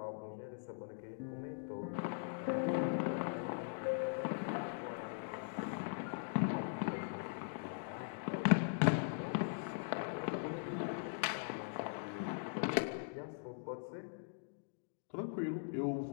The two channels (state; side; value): silent; right; digital silence